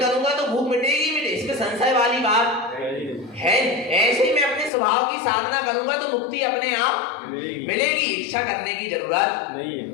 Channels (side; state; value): right; drops out; at 4.7 s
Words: तो भूख मिटेगी, इसमें संशय वाली बात है। ऐसे ही मैं अपने स्वभाव की साधना करूंगा तो मुक्ति अपने आप मिलेगी। इच्छा करने की जरूरत नहीं